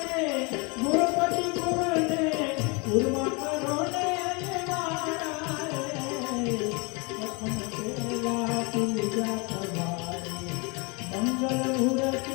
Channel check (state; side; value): quieter; right; 30.2 dB